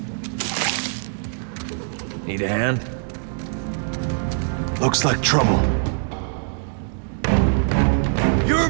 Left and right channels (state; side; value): silent; left; digital silence